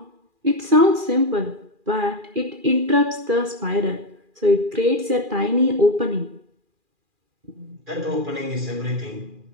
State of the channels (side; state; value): left; late; 2.4 ms